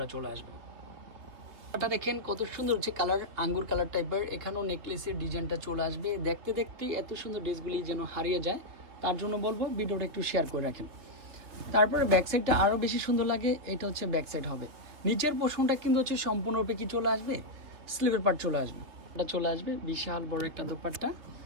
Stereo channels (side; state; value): left; late; 3.3 ms